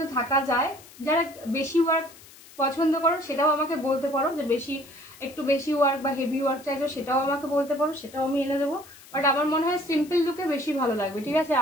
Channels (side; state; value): left; noise; hiss, 21 dB below the sound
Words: থাকা যায়, যারা বেশি ওয়ার্ক পছন্দ করো সেটাও আমাকে বলতে পারো, যে একটু বেশি ওয়ার্ক বা হেভি ওয়ার্ক চাইছো সেটাও আমাকে বলতে পারো, সেটাও আমি এনে দেবো, বাট আমার মনে হয় সিম্পল লুকে বেশি ভালো লাগবে, ঠিক আছে।